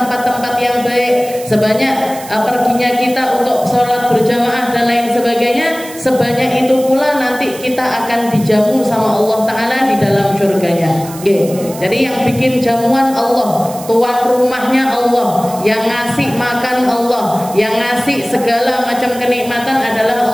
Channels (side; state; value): right; noise; hiss, 15 dB below the sound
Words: yang baik, sebanyak perginya kita untuk sholat berjamaah dan lain sebagainya, sebanyak itu pula nanti kita akan dijamu sama Allah Ta'ala di dalam surganya. Jadi yang bikin jamuan Allah, tuan rumahnya Allah, yang ngasih makan Allah, yang ngasih segala macam kenikmatan adalah